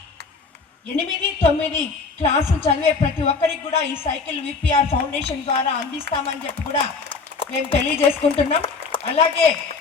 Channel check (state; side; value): quieter; right; 4.6 dB